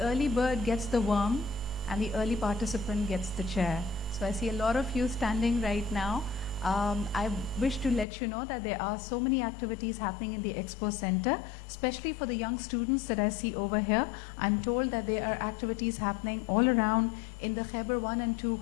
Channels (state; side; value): drops out; right; at 8.1 s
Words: bird gets the worm and the early participant gets the chair. So I see a lot of you standing right now. I wish to let you know that there are so many activities happening in the Expo Center, especially for the young students that I see over here. I'm told that there are activities happening all around in the Khyber 1 and 2